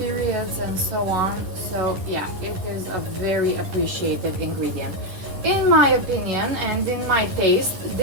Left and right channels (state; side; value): late; left; 10 ms